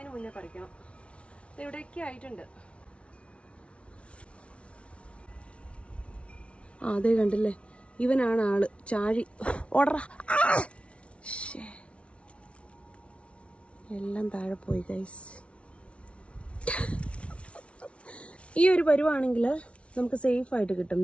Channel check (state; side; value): late; right; 0.061 ms